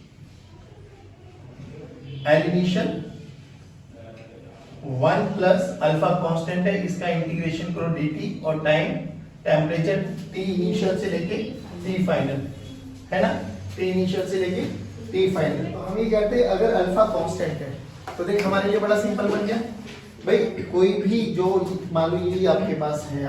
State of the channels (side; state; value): both; identical; correlation 1.00